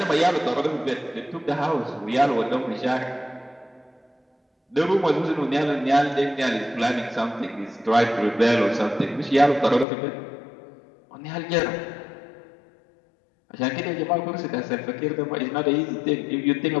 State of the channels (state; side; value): drops out; right; at 9.9 s